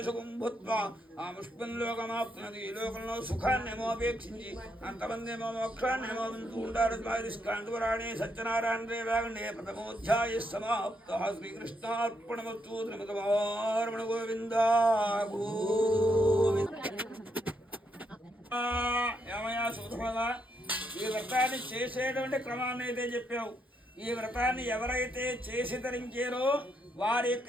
సుఖం భూత్వా ఆ ముష్పంలోకమాప్తున్నది. ఈ లోకంలో సుఖాన్ని ఏమో అపేక్షించి అంతమంది ఏమో మోక్షాన్ని ఏమో వింటూ ఉంటారు. స్కాంతురాణి సత్యనారాయణ రేవాగండే ప్రథమోధ్యాయ సమాప్త. శ్రీకృష్ణార్పణమస్తు. శ్రీమతమారమణ గోవిందా ఏమయ్యా సూత్రమా, ఈ వ్రతాన్ని చేసేటువంటి క్రమాన్ని అయితే చెప్పావు. ఈ వ్రతాన్ని ఎవరైతే చేసి ధరించారో వారి యొక్క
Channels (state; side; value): normal; both; correlation 0.78